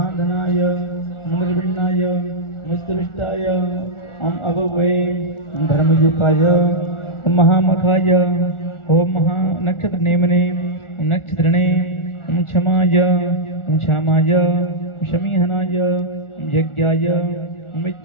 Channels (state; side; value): late; right; 1.4 ms